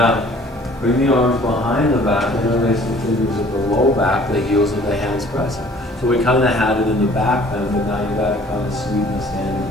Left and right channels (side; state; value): both; normal; correlation 0.53